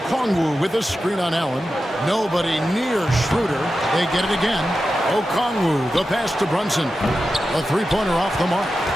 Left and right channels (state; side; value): normal; both; correlation 0.91